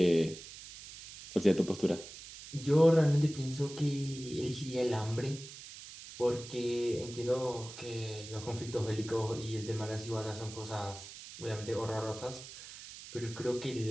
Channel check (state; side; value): noise; right; hiss, 14 dB below the sound